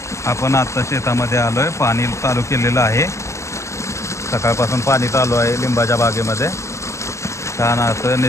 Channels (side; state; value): right; late; 0.14 ms